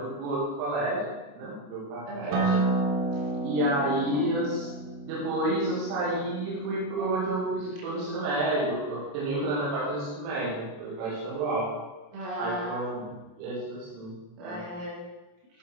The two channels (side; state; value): left; late; 28 ms